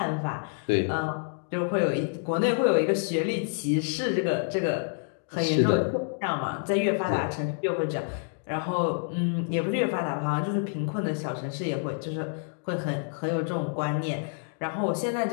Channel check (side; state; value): right; silent; 59 dB below the other